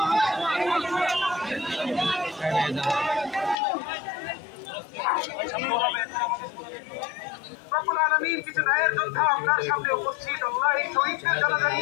রব্বুল আলামিন কিছু ন্যায়ের যোদ্ধা আপনার সামনে উপস্থিত। আল্লাহ এই শহীদদের জানাজা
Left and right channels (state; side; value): drops out; right; at 3.6 s